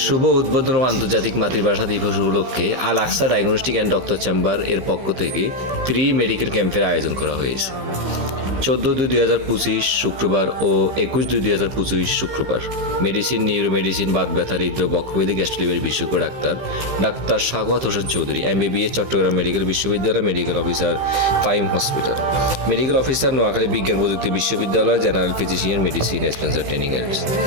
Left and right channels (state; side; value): late; left; 15 ms